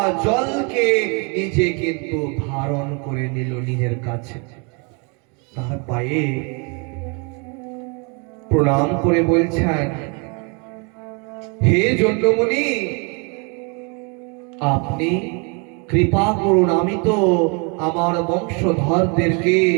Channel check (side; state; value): left; quieter; 33.5 dB